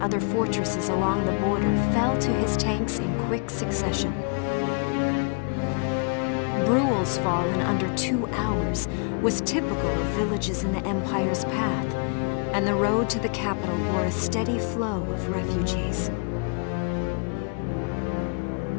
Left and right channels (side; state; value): right; quieter; 38.2 dB